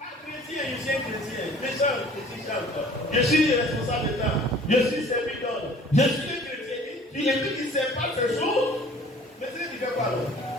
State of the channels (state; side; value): normal; both; correlation 0.50